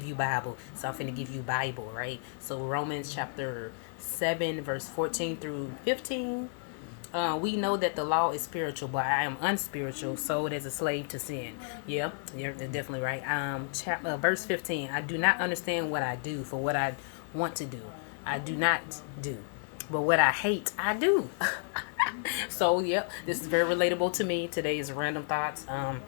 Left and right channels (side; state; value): right; silent; 57 dB below the other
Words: you Bible," so I'm finna give you Bible, right? So Romans chapter 7, verse 14 through 15. We know that the law is spiritual, but I am unspiritual, sold as a slave to sin. Yep, you're definitely right. Verse 15. I do not understand what I do, for what I want to do, I do not do, but what I hate, I do. So, yep, this is very relatable to me. Today's random thoughts.